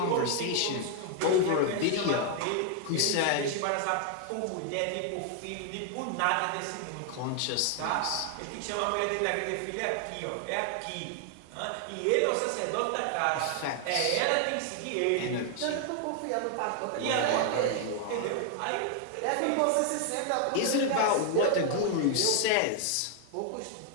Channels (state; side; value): different; both; correlation 0.00